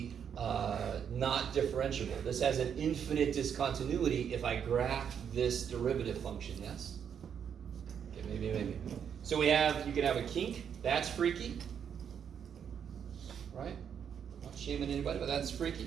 not differentiable. This has an infinite discontinuity if I graph this derivative function, yes? Okay, maybe. So you can have a kink, that's freaky. Right? Not shaming anybody, but that's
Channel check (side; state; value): left; quieter; 8.0 dB